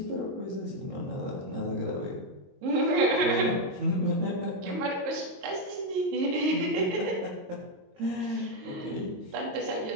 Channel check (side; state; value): left; late; 22 ms